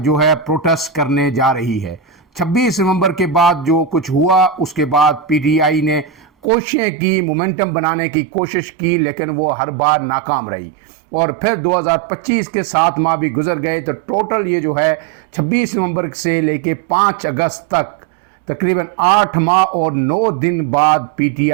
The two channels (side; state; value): left; drops out; at 6.5 s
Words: है प्रोटेस्ट करने जा रही है। 26 नवंबर के बाद जो कुछ हुआ उसके बाद पीटीआई ने कोशिशें की, मोमेंटम बनाने की कोशिश की, लेकिन वो हर बार नाकाम रही। और फिर 2025 के 7 माह भी गुजर गए तो टोटल ये जो है 26 नवंबर से लेके 5 अगस्त तक तकरीबन 8 माह और 9 दिन बाद